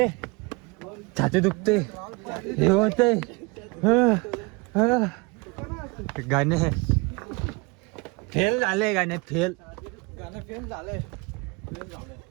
छाती दुखते हे होतंय. गाणे फेल झाले. गाणे फेल. गाणं फेल झालंय.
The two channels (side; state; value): left; quieter; 26.8 dB